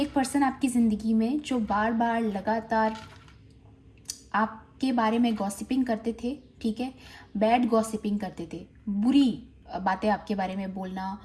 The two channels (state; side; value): identical; both; correlation 1.00